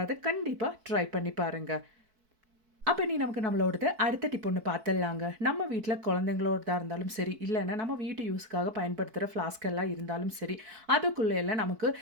கண்டிப்பாக ட்ரை பண்ணி பாருங்கள். அப்போ நமக்கு நம்மளோடது அடுத்த டிப் ஒன்று பார்த்துடலாங்க. நம்ம வீட்டில் குழந்தைங்களோடதா இருந்தாலும் சரி, இல்லைன்னா நம்ம வீட்டு யூஸ்க்காக பயன்படுத்துகிற ஃப்ளாஸ்க் எல்லாம் இருந்தாலும் சரி, அதுக்குள்ளே எல்லாம் நமக்கு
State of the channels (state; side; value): late; left; 4.6 ms